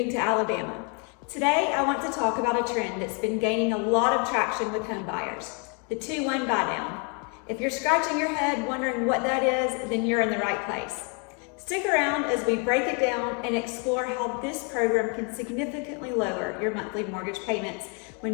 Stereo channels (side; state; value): right; quieter; 36.5 dB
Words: Alabama. Today, I want to talk about a trend that's been gaining a lot of traction with home buyers, the 2-1 buydown. If you're scratching your head wondering what that is, then you're in the right place. Stick around as we break it down and explore how this program can significantly lower your monthly mortgage payments